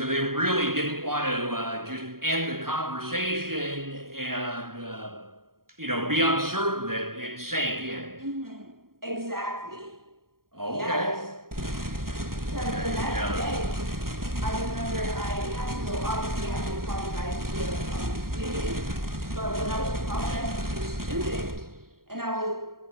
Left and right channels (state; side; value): late; left; 0.93 ms